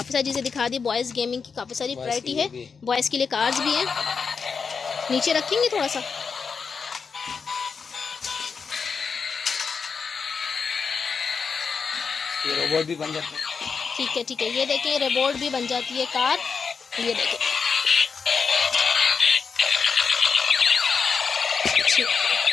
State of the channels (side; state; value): right; quieter; 5.6 dB